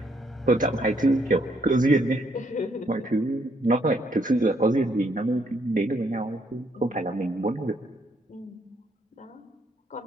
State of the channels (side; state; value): both; normal; correlation 0.71